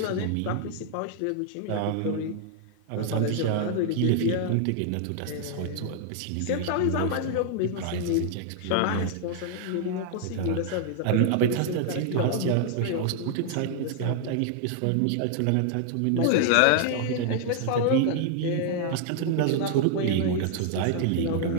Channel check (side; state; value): both; different; correlation 0.00